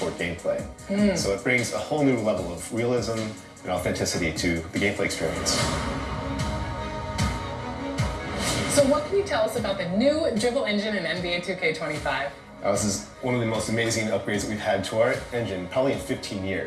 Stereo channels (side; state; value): both; identical; correlation 1.00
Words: gameplay. So it brings a whole new level of realism and authenticity to the gameplay experience. So what can you tell us about the new dribble engine in NBA 2K25? This is one of the most amazing upgrades that we've had to our engine, probably in 15